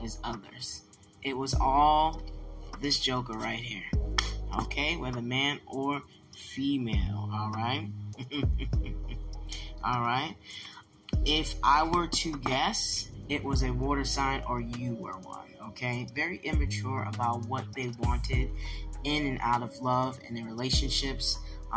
as others. It was all this joker right here. Okay, whether man or female, alright? Alright. If I were to guess, it was a water sign or you were one, okay? Very immature about what they wanted in and out of love and in relationships,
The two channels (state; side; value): identical; both; correlation 1.00